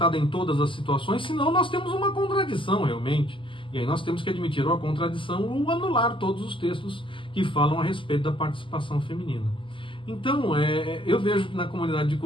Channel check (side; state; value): right; late; 0.25 ms